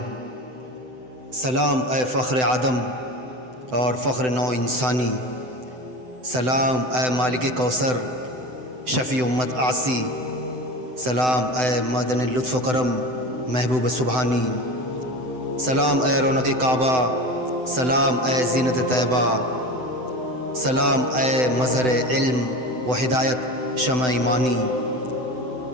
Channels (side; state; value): left; late; 7.9 ms